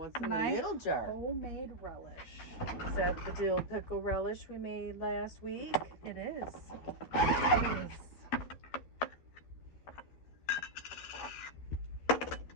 in the little jar? Homemade relish. Is that the dill pickle relish we made last week? It is. It is.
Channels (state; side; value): late; right; 12 ms